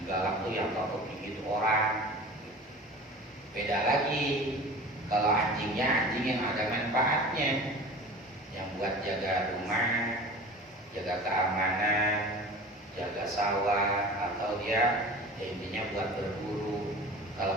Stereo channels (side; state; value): both; normal; correlation 0.38